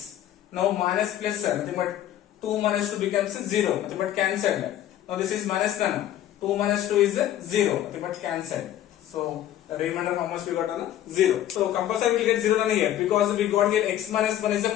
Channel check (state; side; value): quieter; right; 12.0 dB